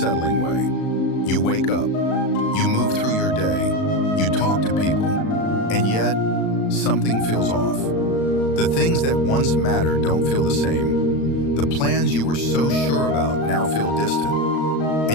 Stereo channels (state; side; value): late; right; 36 ms